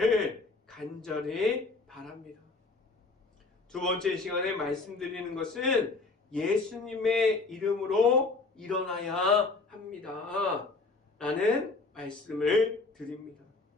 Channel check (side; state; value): right; quieter; 3.7 dB